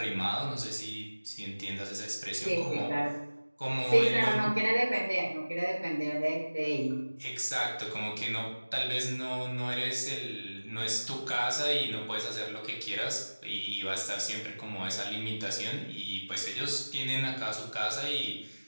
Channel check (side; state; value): both; inverted; correlation -1.00